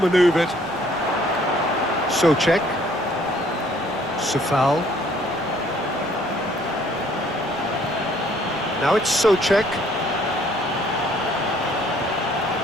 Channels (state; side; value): noise; right; rumble, 26 dB below the sound